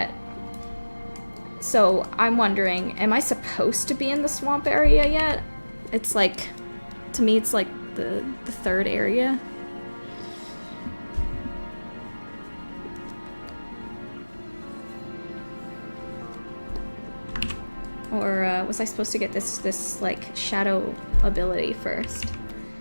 So I'm wondering, am I supposed to be in the swamp area yet? It's like, to me it's like the third area. Or was I supposed to get this like shadow ability first?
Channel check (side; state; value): both; inverted; correlation -1.00